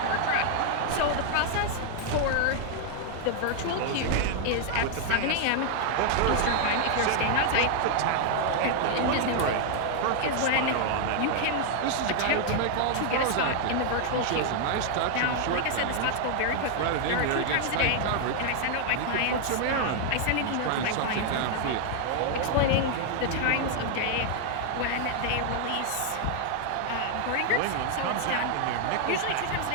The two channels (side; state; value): both; different; correlation 0.00